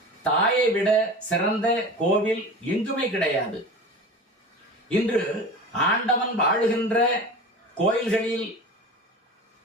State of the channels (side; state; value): both; normal; correlation 0.34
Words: தாயை விட சிறந்த கோவில் எங்குமே கிடையாது. இன்று ஆண்டவன் வாழுகின்ற கோயில்களில்